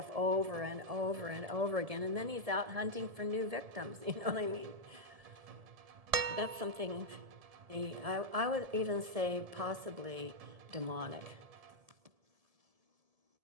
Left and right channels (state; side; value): late; left; 1.7 ms